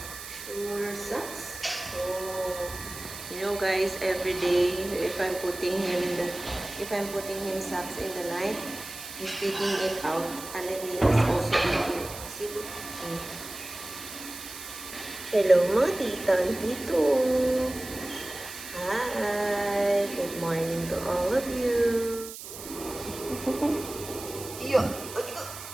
Sure sucks. Oh. You know guys, every day if I'm putting him socks in the night, he's taking it out and then he is also eating. See, look. Hello mga tita and tito. Hi. Good morning to all of you. Iyo.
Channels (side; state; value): right; noise; hiss, 11 dB below the sound